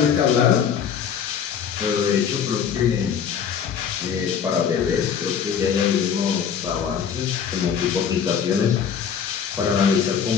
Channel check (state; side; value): quieter; right; 7.6 dB